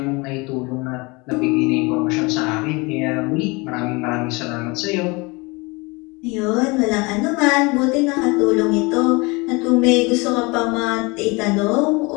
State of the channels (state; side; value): quieter; right; 26.5 dB